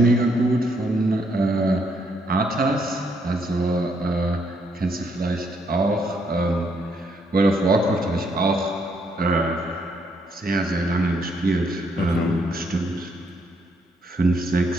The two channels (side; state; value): both; normal; correlation 0.73